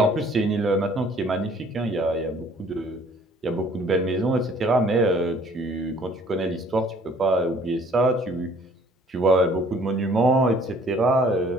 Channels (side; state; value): both; normal; correlation 0.56